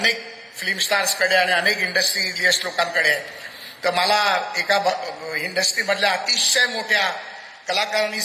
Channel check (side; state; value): both; identical; correlation 1.00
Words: फिल्म स्टार्सकडे आणि अनेक इंडस्ट्रियलिस्ट लोकांकडे आहे. तर मला एका इंडस्ट्रीमधल्या अतिशय मोठ्या कलाकारांनी